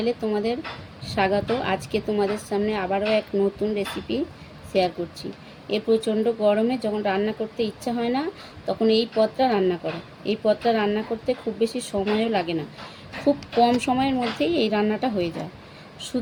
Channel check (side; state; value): both; identical; correlation 1.00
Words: তোমাদের স্বাগত। আজকে তোমাদের সামনে আবারও এক নতুন রেসিপি শেয়ার করছি। এই প্রচণ্ড গরমে যখন রান্না করতে ইচ্ছা হয় না, তখন এই পদটা রান্না করো। এই পদটা রান্না করতে খুব বেশি সময়ও লাগে না, খুব কম সময়ের মধ্যেই এই রান্নাটা হয়ে যায়।